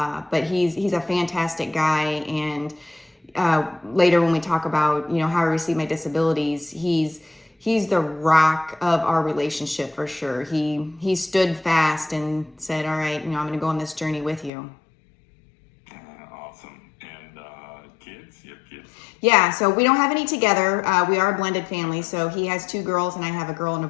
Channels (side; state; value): right; drops out; at 14.5 s